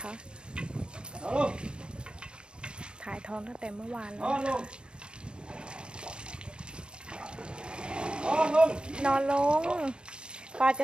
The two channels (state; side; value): late; left; 0.052 ms